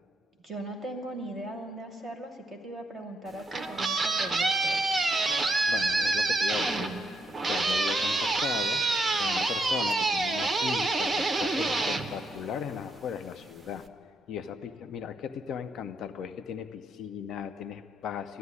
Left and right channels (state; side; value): normal; both; correlation 0.78